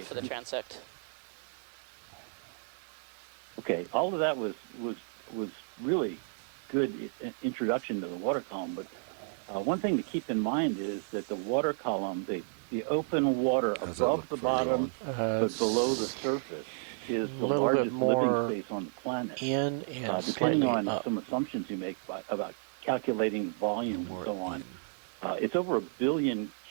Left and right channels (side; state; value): left; silent; digital silence